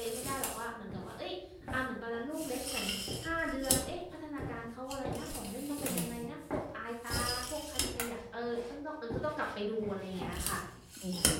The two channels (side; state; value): both; identical; correlation 1.00